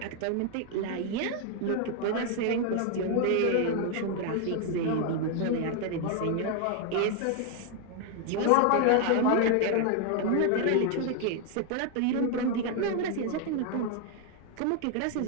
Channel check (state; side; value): different; both; correlation 0.01